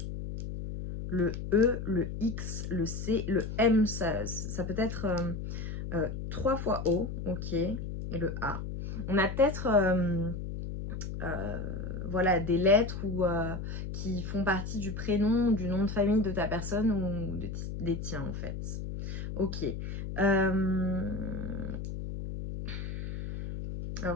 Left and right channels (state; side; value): noise; left; hum, 6 dB below the sound